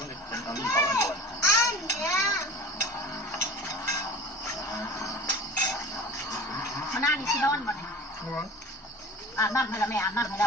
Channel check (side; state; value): both; normal; correlation 0.38